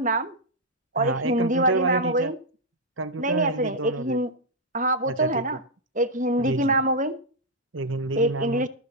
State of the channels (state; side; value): normal; both; correlation -0.04